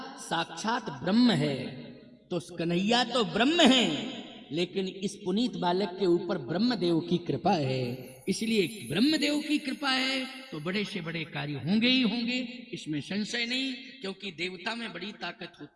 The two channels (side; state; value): both; identical; correlation 1.00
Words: साक्षात ब्रह्म है। तो कन्हैया तो ब्रह्म है, लेकिन इस पुनीत बालक के ऊपर ब्रह्मदेव की कृपा है, इसलिए ब्रह्मदेव की कृपा है तो बड़े से बड़े कार्य होंगे ही होंगे, इसमें संशय नहीं। क्योंकि देवता में बड़ी ताकत